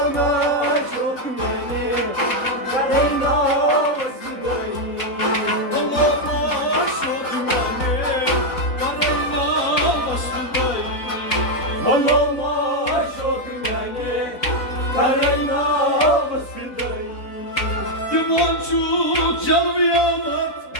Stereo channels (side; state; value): right; late; 4.0 ms